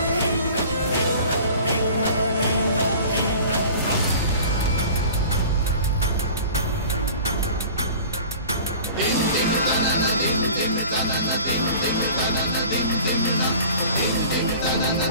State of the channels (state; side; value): inverted; both; correlation -0.42